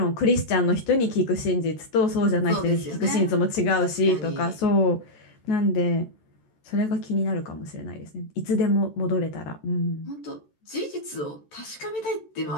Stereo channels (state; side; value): late; right; 13 ms